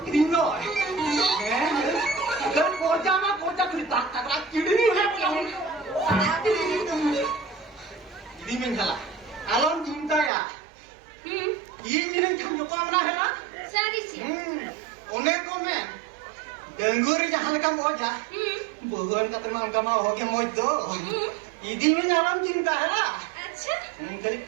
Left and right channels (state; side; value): drops out; left; at 10.3 s